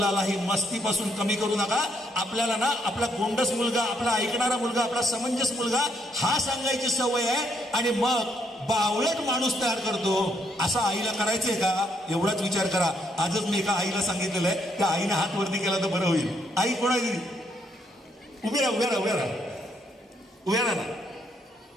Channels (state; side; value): normal; both; correlation 0.74